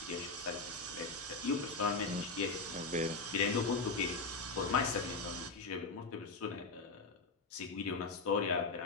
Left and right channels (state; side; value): quieter; right; 3.8 dB